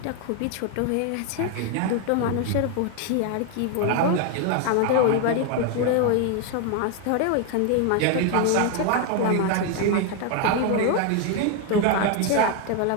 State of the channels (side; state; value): both; different; correlation 0.01